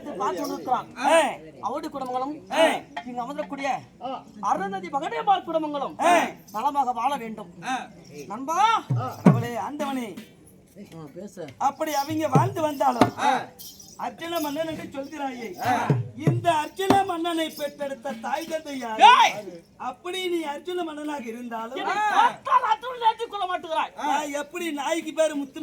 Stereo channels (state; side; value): identical; both; correlation 1.00